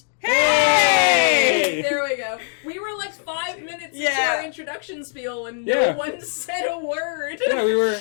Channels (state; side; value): silent; right; 65 dB below the other